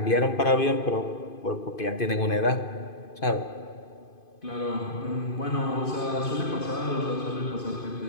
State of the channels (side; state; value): right; late; 2.5 ms